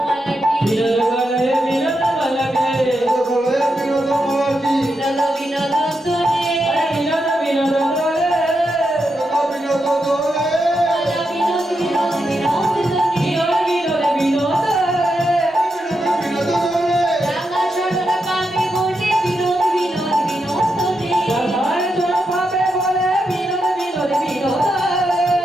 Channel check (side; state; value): both; normal; correlation 0.85